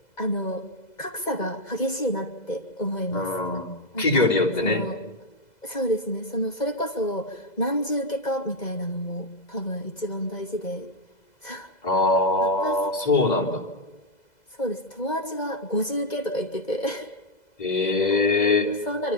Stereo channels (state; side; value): late; right; 2.0 ms